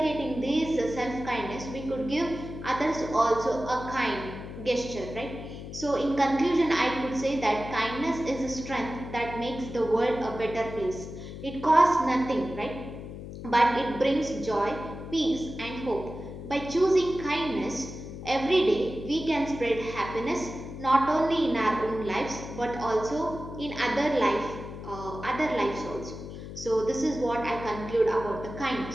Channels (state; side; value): noise; left; hum, 10 dB below the sound